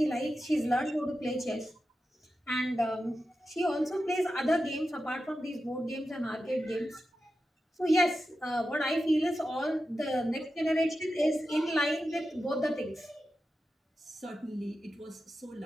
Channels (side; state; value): both; normal; correlation 0.91